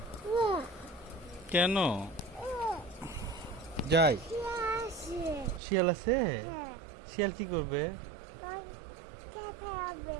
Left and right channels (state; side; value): drops out; left; at 5.6 s